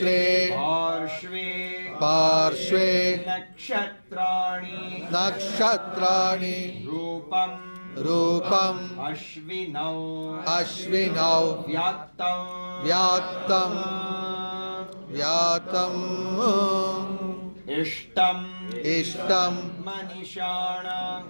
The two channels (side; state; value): both; inverted; correlation -1.00